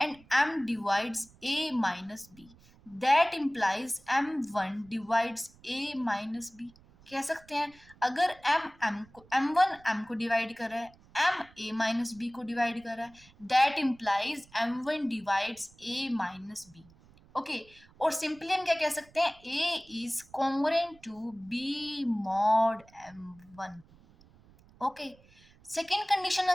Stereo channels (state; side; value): noise; right; rumble, 26 dB below the sound